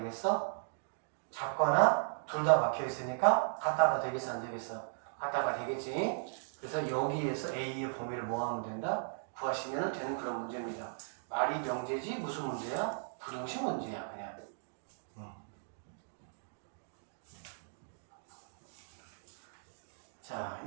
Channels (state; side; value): silent; left; digital silence